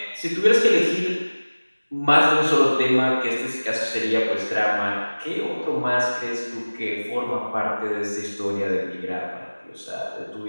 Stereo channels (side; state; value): both; inverted; correlation -1.00